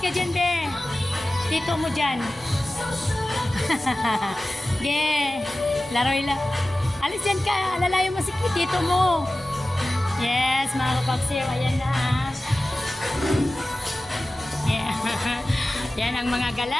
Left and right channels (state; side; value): normal; both; correlation 0.96